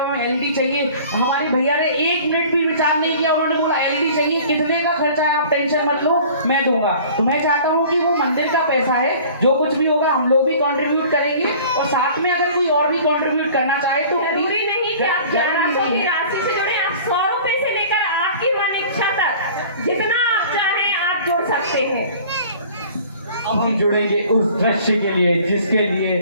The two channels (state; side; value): inverted; both; correlation -0.47